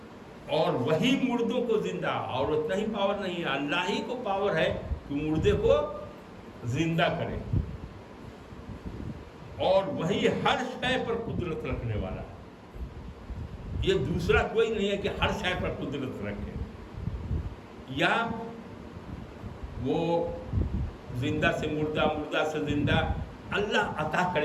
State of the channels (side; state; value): both; identical; correlation 1.00